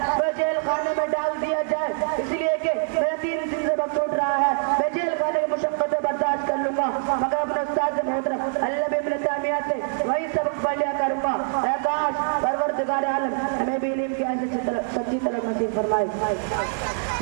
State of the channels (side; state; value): left; silent; digital silence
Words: وہ جیل خانے میں ڈال دیا جائے اس لیے کہ میرا 3 دن سے وقت چھوٹ رہا ہے، میں جیل خانے کی مشقتیں برداشت کر لوں گا مگر اپنے استاد محترم علامہ ابن تیمیہ سے وہی سبق پڑھ لیا کروں گا۔ اے کاش پروردگار عالم ہمیں بھی علم کی ایسی سچی طلب نصیب فرمائے۔